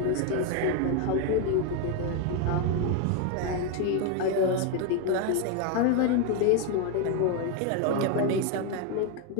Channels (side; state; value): both; different; correlation 0.01